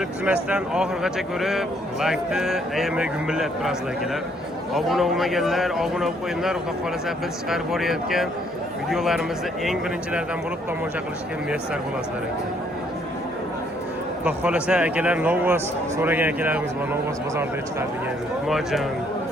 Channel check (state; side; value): normal; both; correlation 0.67